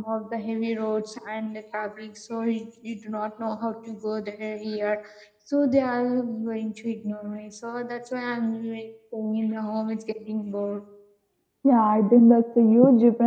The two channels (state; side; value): identical; both; correlation 1.00